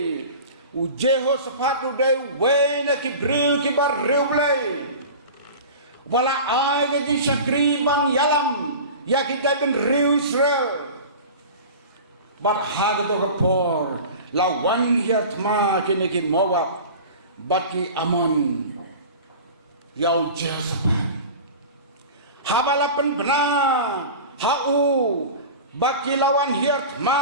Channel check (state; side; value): inverted; both; correlation -0.35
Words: u Jehoshaphat u de wena ki briu ki bar riu blay wala ai ga di sakri bang yalam ya ki ben riu Israel bar hagato ka por lawan hiat ma kini ki Moab baki Amon yau Jehoshaphat habalapan benar hau baki lawan hiat